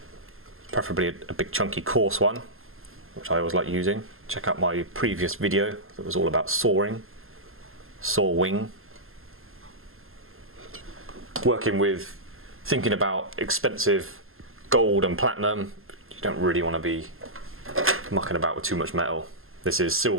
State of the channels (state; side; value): late; left; 0.61 ms